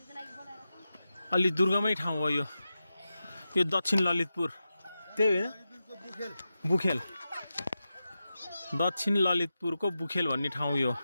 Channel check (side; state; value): both; inverted; correlation -0.91